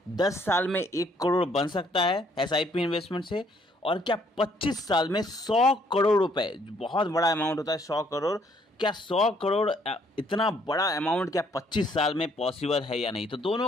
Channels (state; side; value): normal; both; correlation 0.66